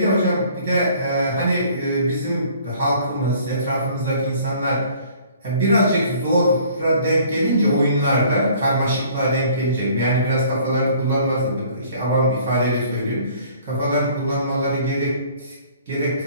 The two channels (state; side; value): inverted; both; correlation -0.54